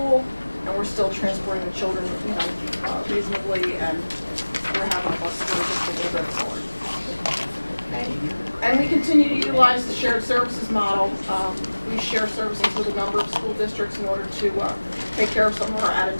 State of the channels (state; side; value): inverted; both; correlation -1.00